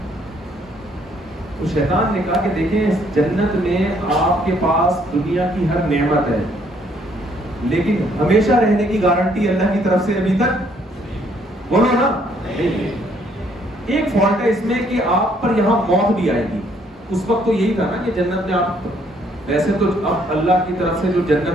تو شیطان نے کہا کہ دیکھیں جنت میں آپ کے پاس دنیا کی ہر نعمت ہے، لیکن ہمیشہ رہنے کی گارنٹی اللہ کی طرف سے ابھی تک، بولو نا، ایک فالٹ ہے اس میں کہ آپ پر یہاں موت بھی آئے گی۔ اس وقت تو یہی تھا نا کہ جنت میں آپ، ویسے تو اب اللہ کی طرف سے جو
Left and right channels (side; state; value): both; normal; correlation 0.66